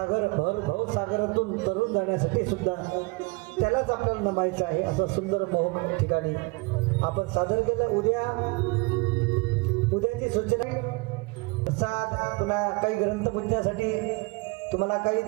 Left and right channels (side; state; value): left; quieter; 27.1 dB